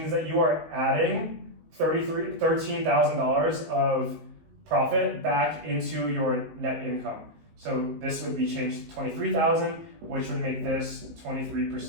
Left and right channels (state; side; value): late; left; 19 ms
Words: that you are adding $13,000 of profit back into your net income. So this would be changed to $23,000, which would make this